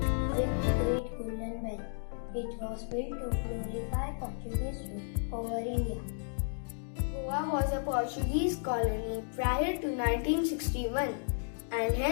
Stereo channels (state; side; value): silent; right; digital silence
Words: with great golden bell. It was built to glorify Portuguese rule over India. Goa was a Portuguese colony prior to 1961 and